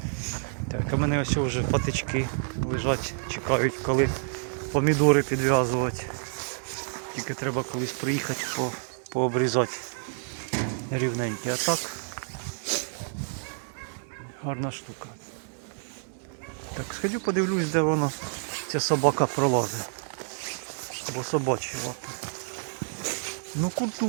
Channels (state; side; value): silent; left; digital silence